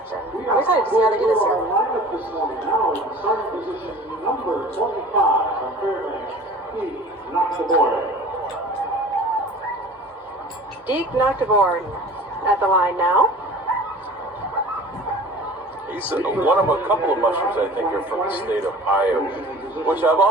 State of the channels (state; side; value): normal; both; correlation 0.42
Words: And I'm excited to see how they do this year. Deke Noctiborn at the line now. He's one of a couple of mushers, I think, are from the state of Iowa, which I've